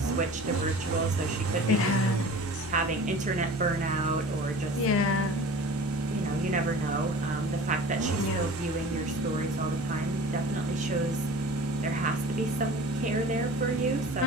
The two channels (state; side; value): normal; both; correlation 0.41